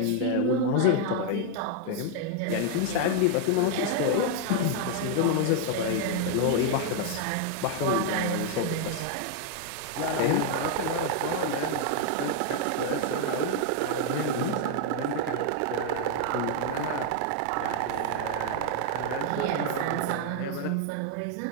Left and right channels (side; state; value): both; different; correlation 0.00